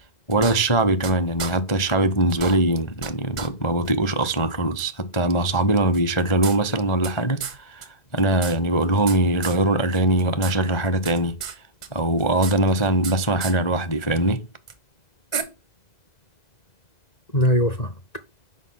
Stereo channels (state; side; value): late; right; 2.0 ms